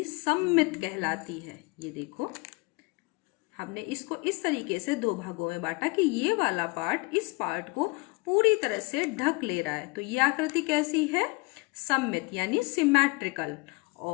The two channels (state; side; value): quieter; right; 27.4 dB